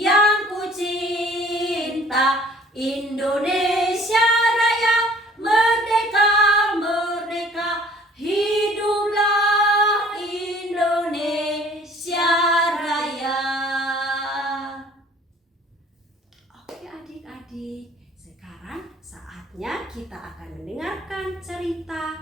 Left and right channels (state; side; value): normal; both; correlation 0.54